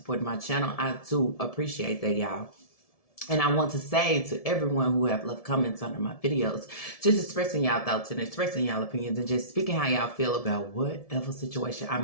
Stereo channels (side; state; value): right; late; 1.7 ms